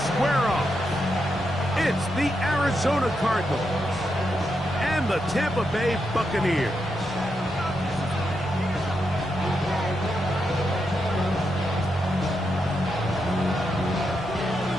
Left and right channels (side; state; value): both; normal; correlation 0.84